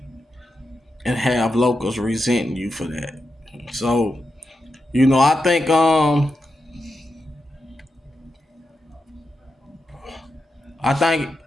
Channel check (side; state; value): both; normal; correlation 0.88